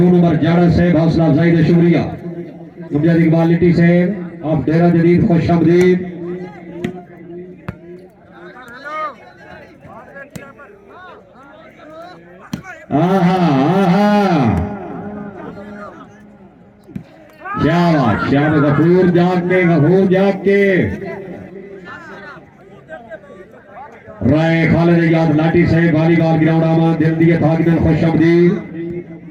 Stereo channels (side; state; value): both; identical; correlation 1.00